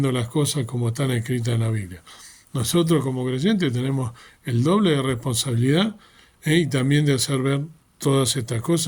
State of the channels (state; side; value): identical; both; correlation 1.00